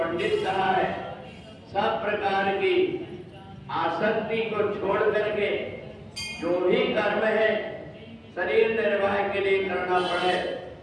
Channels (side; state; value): both; identical; correlation 1.00